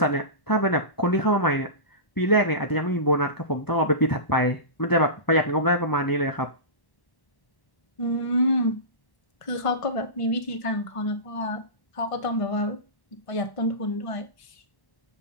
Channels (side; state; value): right; late; 1.1 ms